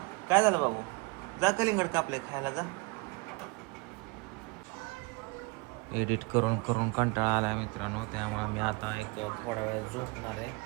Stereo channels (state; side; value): quieter; left; 26.6 dB